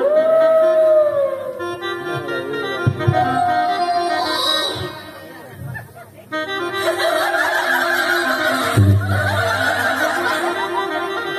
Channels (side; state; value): both; identical; correlation 1.00